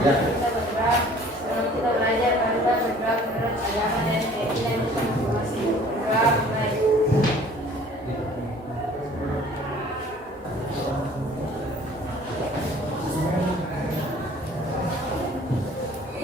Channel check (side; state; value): both; normal; correlation 0.52